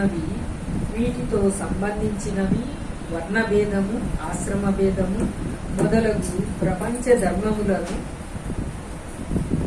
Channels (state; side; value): identical; both; correlation 1.00